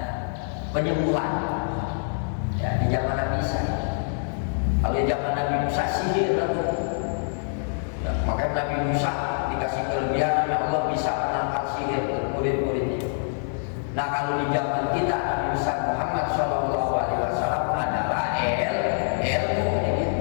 penyembuhan ya di zaman Nabi Isa. Kalau di zaman Nabi Musa sihir ya, makanya Nabi Musa dikasih kelebihan oleh Allah bisa menangkal sihir murid-muridnya. Nah kalau di zaman kita Nabi Musa Muhammad SAW adalah ilmu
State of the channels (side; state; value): right; silent; digital silence